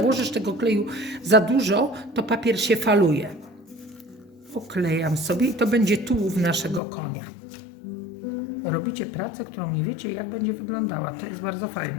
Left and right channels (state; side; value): drops out; right; at 6.8 s